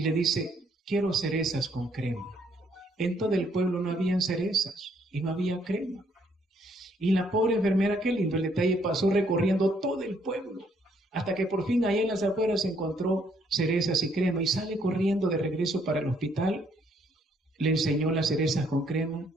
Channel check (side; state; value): both; normal; correlation 0.68